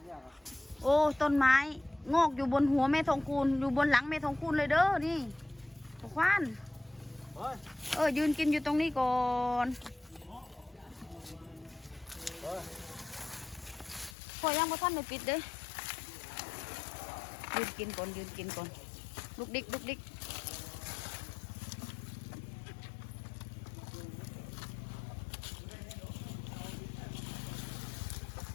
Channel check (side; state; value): right; drops out; at 14.2 s